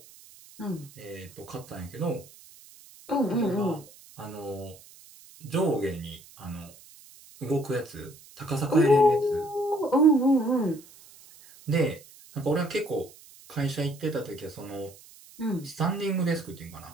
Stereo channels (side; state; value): right; noise; hiss, 22 dB below the sound